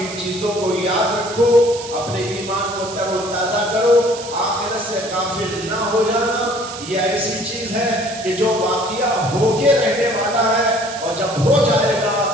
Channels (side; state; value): right; noise; hiss, 12 dB below the sound